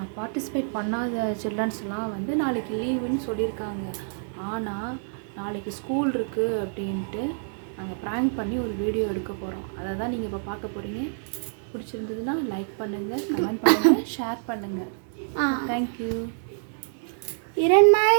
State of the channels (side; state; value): left; silent; 60 dB below the other